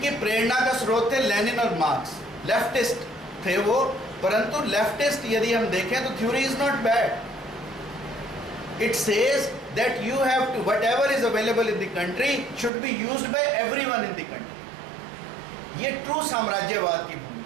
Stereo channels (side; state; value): left; drops out; at 12.7 s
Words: प्रेरणा का स्रोत थे लेनिन और मार्क्स। लेफ्टिस्ट थे वो, परंतु लेफ्टिस्ट यदि हम देखें तो theory is not bad. It says that you have to, whatever is available in the country should be used by everyone in the country. ये ट्रू साम्राज्यवाद की